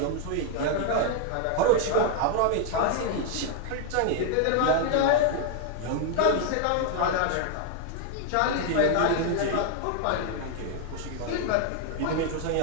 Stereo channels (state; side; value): different; both; correlation 0.00